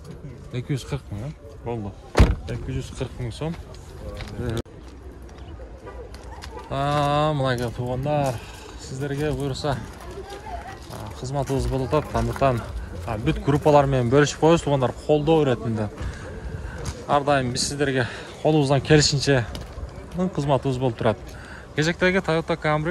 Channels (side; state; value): both; identical; correlation 1.00